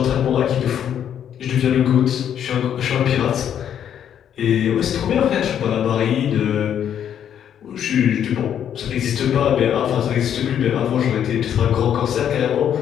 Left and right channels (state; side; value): quieter; right; 9.4 dB